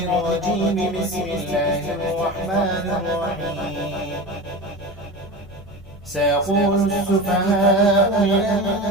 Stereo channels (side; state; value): both; normal; correlation 0.29